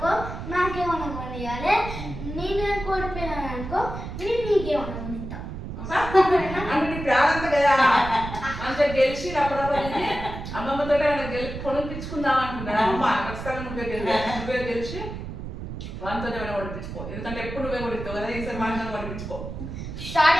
నాకేమన్నా కొనియాలి, నేను కనుక ఓడిపోయినాను అనుకో నేను నీకేమన్నా కొనిస్తా. అంటే ప్రారంభం కదా అంత గెలిచి అప్పుడప్పుడు అమ్మమ్మతో కొనిపించుకుందాం అనుకుంటాను. అమ్మ ఖచ్చితంగా నువ్వే గెలిచి వాళ్ళతో ఏమైనా కొనిపించుకో, ఎందుకంటే ఎప్పుడు నువ్వే కొనిస్తావు కదా, ఈసారి వాళ్ళతో కొనిపించుకో. స్టార్ట్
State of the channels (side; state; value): right; noise; rumble, 8 dB below the sound